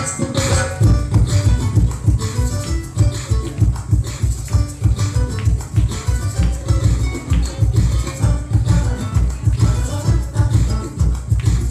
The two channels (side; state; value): both; identical; correlation 1.00